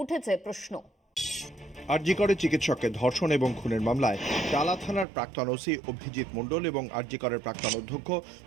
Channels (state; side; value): drops out; left; at 5.1 s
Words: উঠেছে প্রশ্ন। আরজিকরে চিকিৎসককে ধর্ষণ এবং খুনের মামলায় টালা থানার প্রাক্তন ওসি অভিজিৎ মণ্ডল এবং আরজিকরের প্রাক্তন অধ্যক্ষ